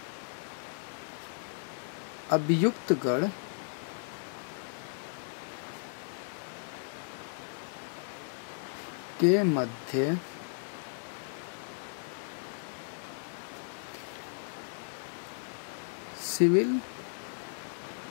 अभियुक्त गण के मध्य सिविल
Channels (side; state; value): right; silent; digital silence